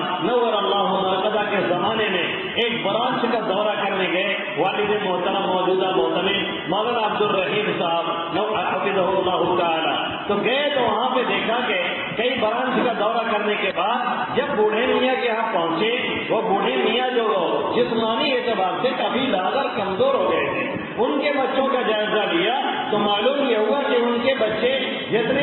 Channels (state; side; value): identical; both; correlation 1.00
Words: نور اللہ مرقدہ کے زمانے میں ایک برانچ کا دورہ کرنے گئے، والد محترم موجودہ محتمم مولانا عبد الرحیم صاحب حفظہ اللہ تعالی، تو گئے تو وہاں پہ دیکھا کہ کئی برانچ کا دورہ کرنے کے بعد جب بوڑھے میاں کے یہاں پہنچے، وہ بوڑھے میاں جو جسمانی اعتبار سے کافی لاغر کمزور ہو گئے تھے، ان کے بچوں کا جائزہ لیا تو معلوم یہ ہوا کہ ان کے بچے